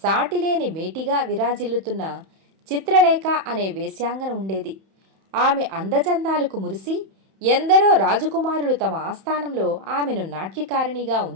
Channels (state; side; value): late; left; 31 ms